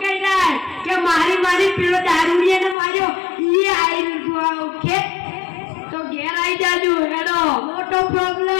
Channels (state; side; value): drops out; right; at 2.8 s